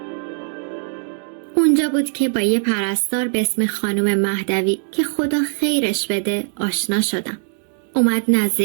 بود که با یه پرستار به اسم خانم مهدوی که خدا خیرش بده آشنا شدم. اومد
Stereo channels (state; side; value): silent; left; digital silence